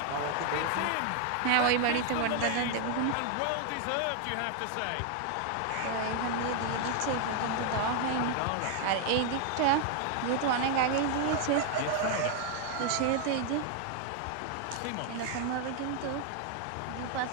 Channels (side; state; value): both; different; correlation 0.00